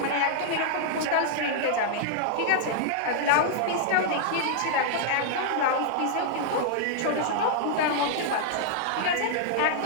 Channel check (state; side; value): different; both; correlation -0.01